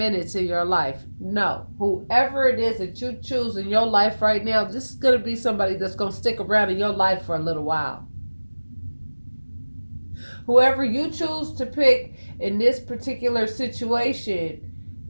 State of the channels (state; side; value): inverted; both; correlation -1.00